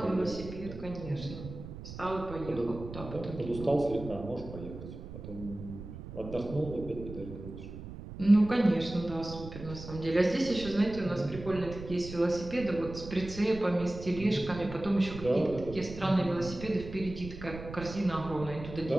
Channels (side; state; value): right; noise; rumble, 11 dB below the sound